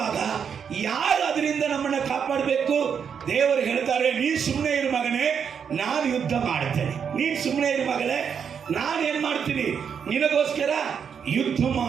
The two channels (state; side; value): quieter; left; 7.2 dB